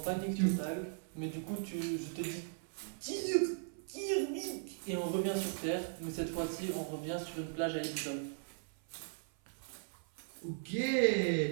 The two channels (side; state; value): left; silent; 52 dB below the other